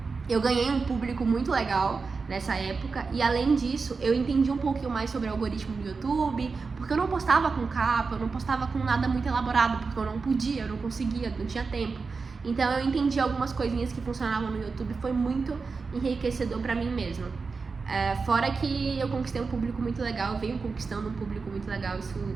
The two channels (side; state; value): left; quieter; 4.6 dB